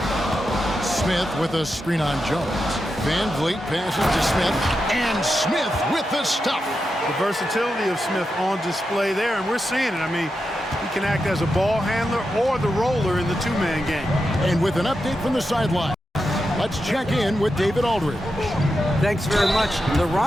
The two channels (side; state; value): both; normal; correlation 0.88